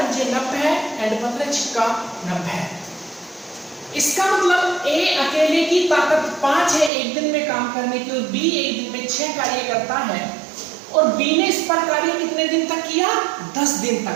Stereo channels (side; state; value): left; drops out; at 6.9 s